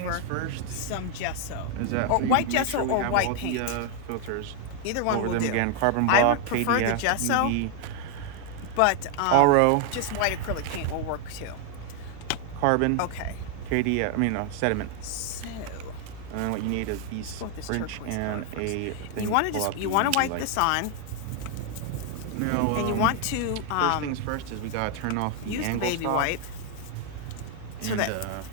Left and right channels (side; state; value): both; different; correlation 0.00